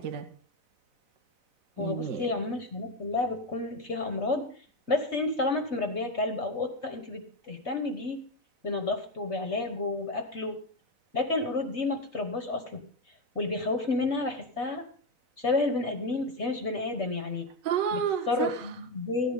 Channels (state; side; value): late; left; 4.0 ms